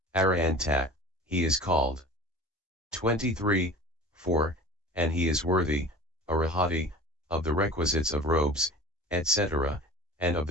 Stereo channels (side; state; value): both; normal; correlation 0.39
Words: arahanta, he is called. 23, 4, and he is worthy, arahati, of the requisites of robes, etc., and of